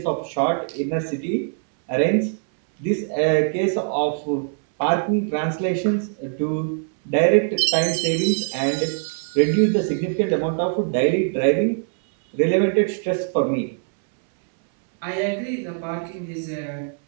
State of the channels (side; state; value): left; silent; 64 dB below the other